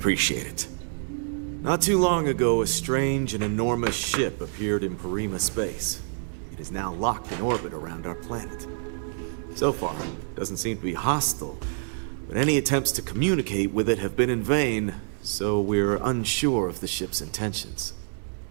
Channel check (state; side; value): silent; left; 59 dB below the other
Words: it. Not too long ago, a strange and enormous ship appeared in Parima space. It is now locked in orbit around our planet. So far, it doesn't seem to be hostile, but any attempts to communicate with it have been in vain, so we're unsure of the ship's intentions.